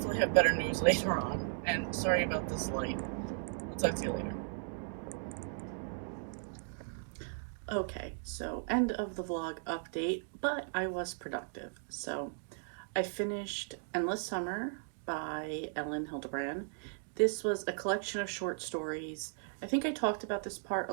have better news later on. And sorry about this light. I'll talk to you later. Okay, so end of the vlog update, but I was productive. So I finished Endless Summer by Ellen Hildebrand. This was a collection of short stories. I think I talked about this part a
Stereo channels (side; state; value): left; silent; digital silence